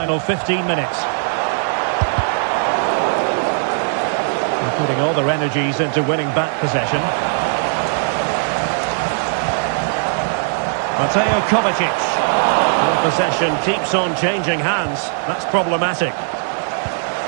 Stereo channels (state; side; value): silent; left; digital silence